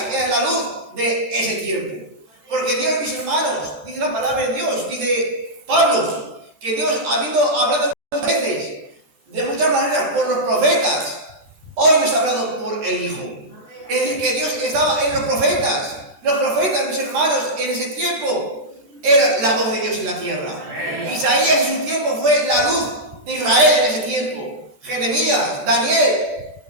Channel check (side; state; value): left; late; 14 ms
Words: era la luz de ese tiempo. Porque Dios, mis hermanos, dice la palabra de Dios, dice Pablo, que Dios, habiendo hablado muchas veces, de muchas maneras, por los profetas, hoy nos ha hablado por el Hijo. Es decir, que Dios estaba en los profetas. Los profetas, mis hermanos, en ese tiempo, eran la voz de Dios en la tierra. Isaías en su tiempo fue la luz de Israel en ese tiempo. Jeremías, Daniel,